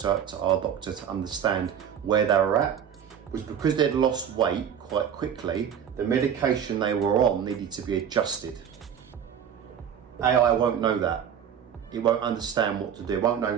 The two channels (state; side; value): quieter; left; 8.4 dB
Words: to our doctor, to understand where they were at, was because they'd lost weight quite quickly, the medication they were on needed to be adjusted. AI won't know that. It won't understand what to do. It won't